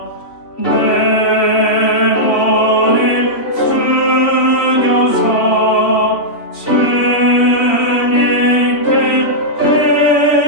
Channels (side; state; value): right; late; 3.1 ms